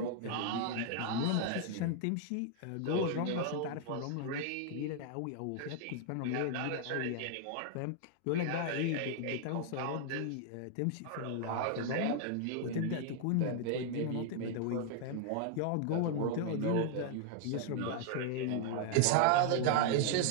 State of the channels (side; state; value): both; different; correlation 0.00